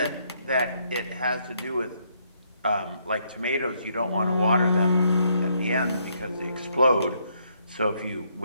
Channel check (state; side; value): inverted; both; correlation -0.72